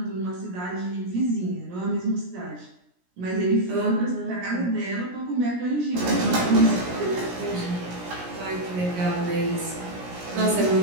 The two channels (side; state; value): left; late; 17 ms